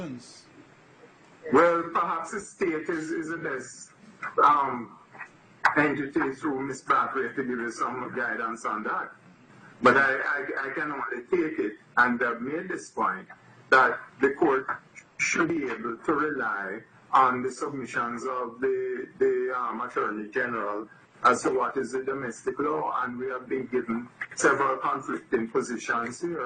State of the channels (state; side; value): identical; both; correlation 1.00